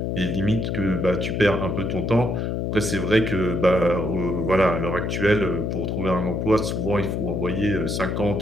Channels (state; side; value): noise; left; hum, 1 dB below the sound